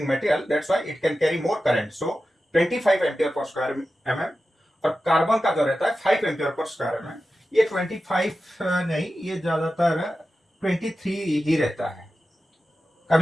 material, that's why it can carry more current। so 25 ampere per square mm। और carbon का जो रहता है 5 ampere per square mm, ये 25 नहीं, ये ज्यादातर 23 ही रहता है,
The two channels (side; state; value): both; normal; correlation 0.93